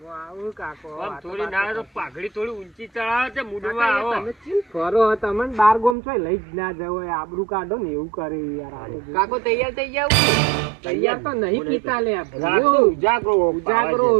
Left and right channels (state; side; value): drops out; left; at 6.0 s